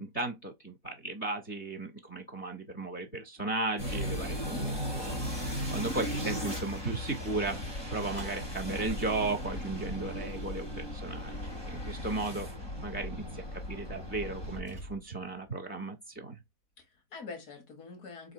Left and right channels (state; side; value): late; right; 4.1 ms